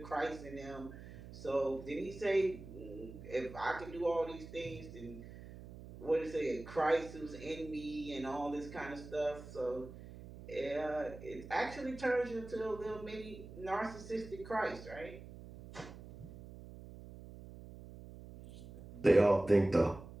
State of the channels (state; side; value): noise; right; hum, 14 dB below the sound